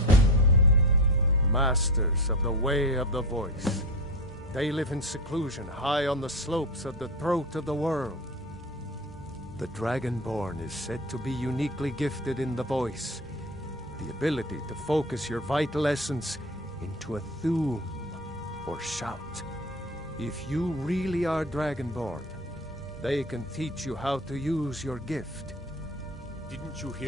Masters of the Way of the Voice. They live in seclusion high on the slopes of the throat of the world. The Dragonborn is said to be uniquely gifted in the voice, the ability to focus your vital essence into a thum or shout. If you really are Dragonborn, they can teach you how to use your gift. Didn't you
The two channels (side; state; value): both; normal; correlation 0.26